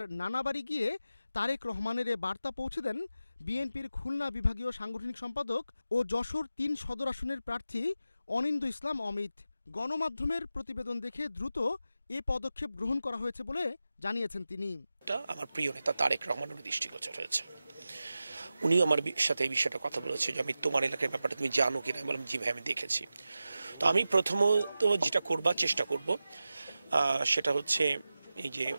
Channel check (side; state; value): both; inverted; correlation -0.93